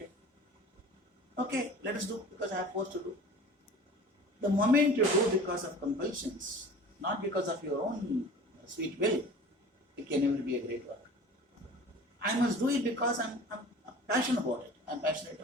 Okay, let us do because I have forced to do. The moment you do because of compulsions, not because of your own sweet will, it can never be a great work. I must do it because I'm passionate about it. I'm passionate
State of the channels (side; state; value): both; normal; correlation 0.42